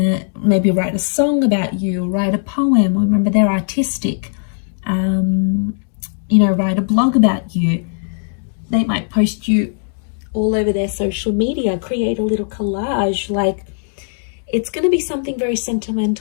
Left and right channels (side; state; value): right; silent; digital silence